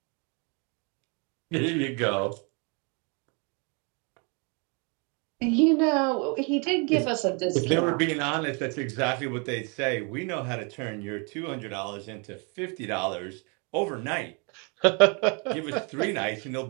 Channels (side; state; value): left; quieter; 33.9 dB